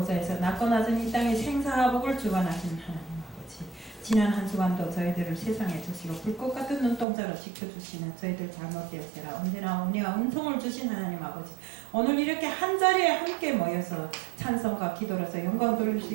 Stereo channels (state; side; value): drops out; left; at 7.1 s